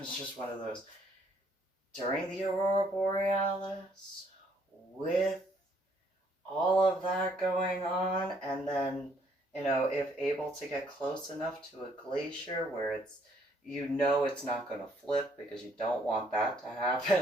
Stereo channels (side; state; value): both; normal; correlation 0.67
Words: just one of those during the aurora borealis with all of that going on, and then, if able to get close enough to a glacier where it's, it's not going to flip, because you don't want that to